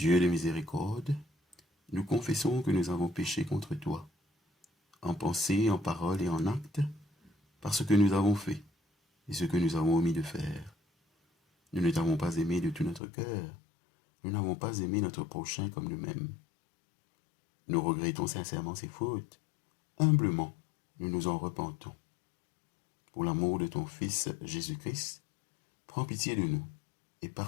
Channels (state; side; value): drops out; right; at 13.0 s